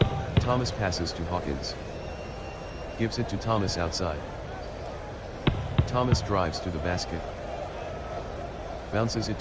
Thomas passes to Hawkins. Gives it to Thomas outside. Thomas drives to the basket. Bounces it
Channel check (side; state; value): both; identical; correlation 1.00